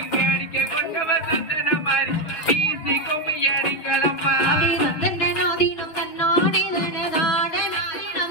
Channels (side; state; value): right; late; 6.3 ms